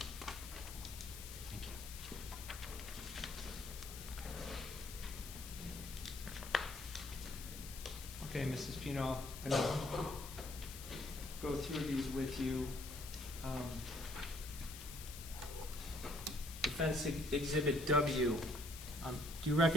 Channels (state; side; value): noise; left; hiss, 11 dB below the sound